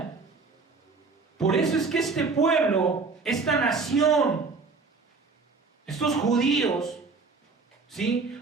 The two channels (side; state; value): left; quieter; 4.3 dB